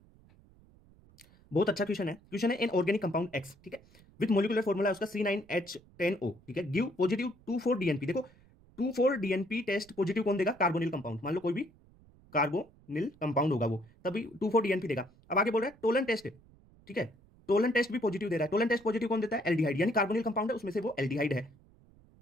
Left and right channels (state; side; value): noise; right; rumble, 27 dB below the sound